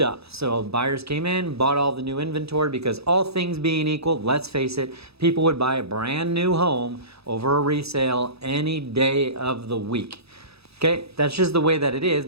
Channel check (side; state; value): left; late; 0.78 ms